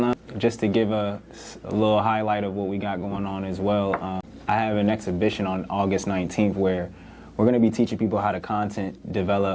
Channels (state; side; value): identical; both; correlation 1.00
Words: just to give a little highlight of what we got going on as well, I have an exhibition on August 19th where we're going to be teaching people how to content